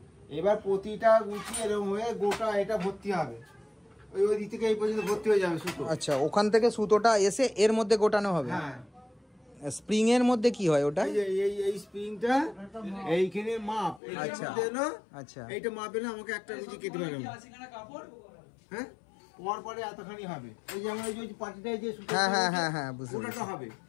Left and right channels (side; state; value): right; drops out; at 14.0 s